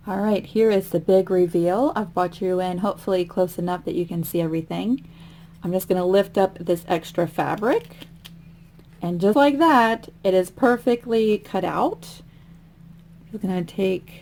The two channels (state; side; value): identical; both; correlation 1.00